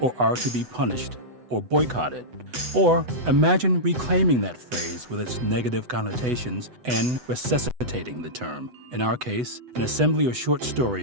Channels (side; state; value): left; late; 8.0 ms